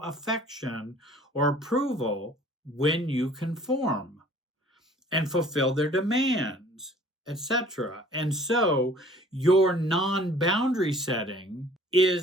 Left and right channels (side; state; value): both; normal; correlation 0.52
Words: or approval when you conform and fulfill their demands, etc. And so your non-boundary setting